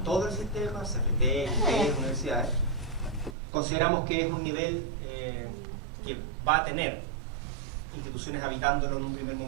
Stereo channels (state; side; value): drops out; left; at 3.4 s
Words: todo el sistema, CFT, IPE, universidades. Consideramos que es un nivel que va a tener instituciones habitándolo en un primer